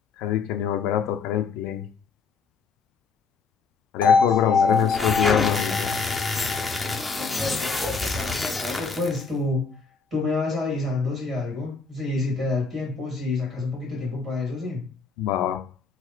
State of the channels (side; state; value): right; quieter; 5.1 dB